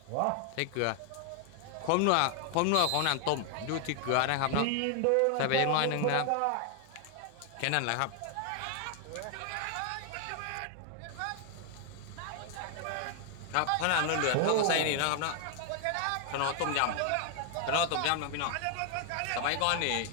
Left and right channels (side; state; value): both; different; correlation 0.00